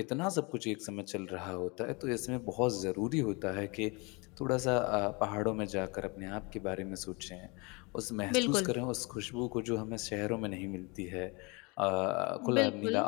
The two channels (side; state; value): right; quieter; 28.6 dB